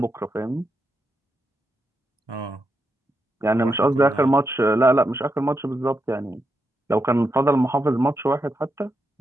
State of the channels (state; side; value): normal; both; correlation 0.84